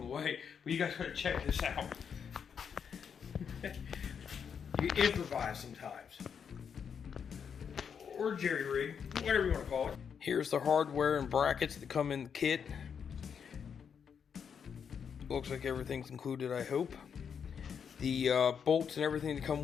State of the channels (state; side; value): quieter; right; 7.1 dB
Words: the way, but you guys gotta check this out. You improvise sometimes. Or jerry rig, whatever you want to call it. Here's the hardware and brackets that come in the kit. Looks like everything's included, I hope. The bolts and everything that come